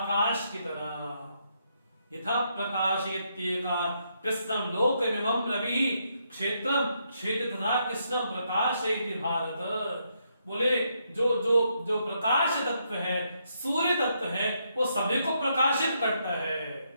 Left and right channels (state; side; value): inverted; both; correlation -0.77